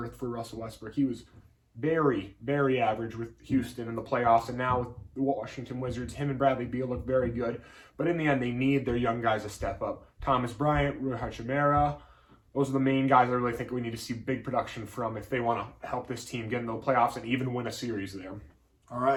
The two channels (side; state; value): both; identical; correlation 1.00